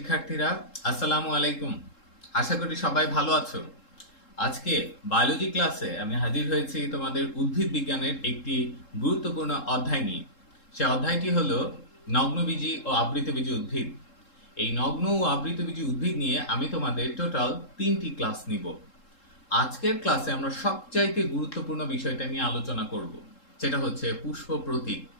আসসালামু আলাইকুম। আশা করি সবাই ভালো আছো। আজকে বায়োলজি ক্লাসে আমি হাজির হয়েছি তোমাদের উদ্ভিদ বিজ্ঞানের একটি গুরুত্বপূর্ণ অধ্যায় নিয়ে। সে অধ্যায়টি হলো নগ্নবীজি ও আবৃতবীজি উদ্ভিদ। এই নগ্ন ও আবৃতবীজি উদ্ভিদ নিয়ে আমি তোমাদের টোটাল 3টি ক্লাস নিব। আজকের ক্লাসে আমরা সবচাইতে গুরুত্বপূর্ণ বিষয়টা নিয়ে আলোচনা করব, সেটা হচ্ছে পুষ্প প্রতীক।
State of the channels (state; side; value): late; right; 3.7 ms